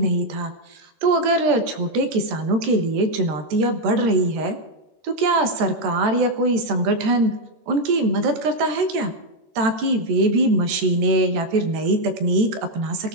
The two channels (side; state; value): left; late; 13 ms